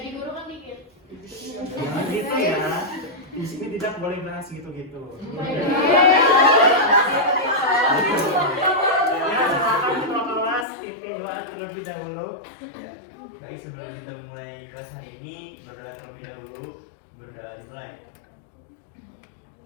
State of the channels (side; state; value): right; drops out; at 10.7 s